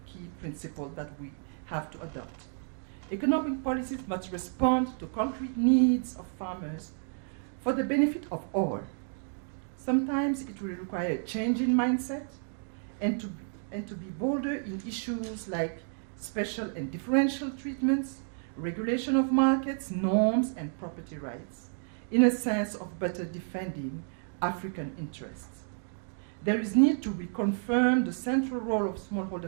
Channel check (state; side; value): silent; left; 57 dB below the other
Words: key principle that we have to adopt. Economic policies must respond to concrete needs of farmers for the benefit of all. Sometimes it will require a change in mindset and to be bolder in issues like special and differential treatments, regulation of markets, norms, and property rights, in a sense of better defending African interests. There is need to reconfirm the central role of